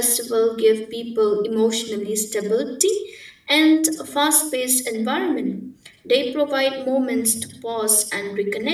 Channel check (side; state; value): both; identical; correlation 1.00